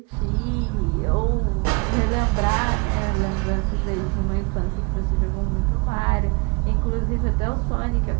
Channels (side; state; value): left; quieter; 28.9 dB